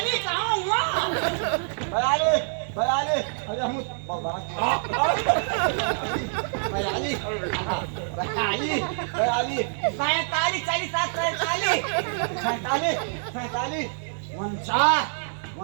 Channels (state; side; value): silent; left; 61 dB below the other